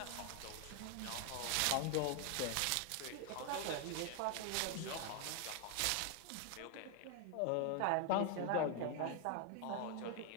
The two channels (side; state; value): both; different; correlation 0.01